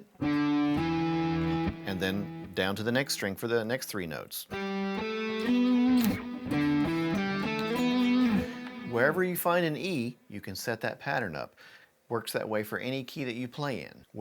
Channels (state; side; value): identical; both; correlation 1.00